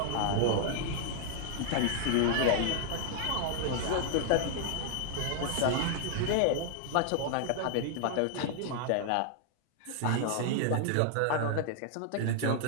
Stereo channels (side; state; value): both; different; correlation 0.00